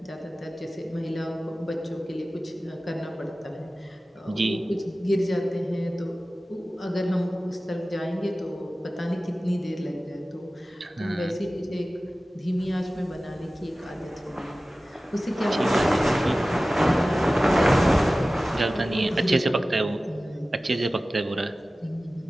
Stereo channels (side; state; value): both; normal; correlation 0.96